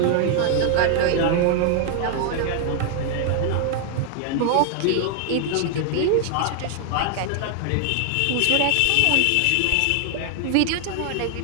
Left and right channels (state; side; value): different; both; correlation 0.00